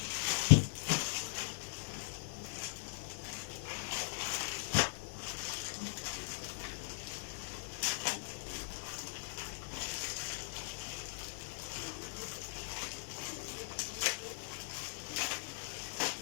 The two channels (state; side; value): silent; right; digital silence